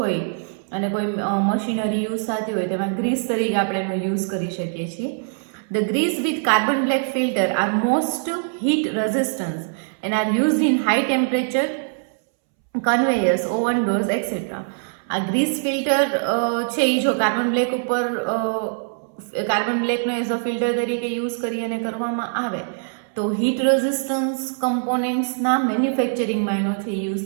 અને કોઈ મશીનરી યુઝ થતી હોય તેમાં ગ્રીસ તરીકે આપણે એનો યુઝ કરી શકીએ છીએ. The grease with carbon black filter are most heat resistant and are used in high temperature conveyors, oven doors et cetera. આ ગ્રીસ ફિલ્ટર છે એ જો કાર્બન બ્લેક ઉપર કાર્બન બ્લેકનો એઝ અ ફિલ્ટર તરીકે યુઝ કરી અને કરવામાં આવે તો હીટ રેઝિસ્ટન્સ કમ્પોનેન્ટ્સના મેન્યુફેક્ચરિંગમાં એનો છે યુઝ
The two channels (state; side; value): silent; left; 64 dB below the other